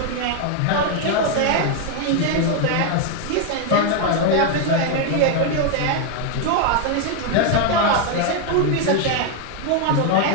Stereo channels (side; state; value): both; different; correlation 0.01